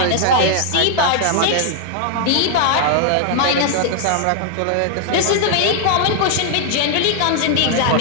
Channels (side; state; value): both; different; correlation 0.00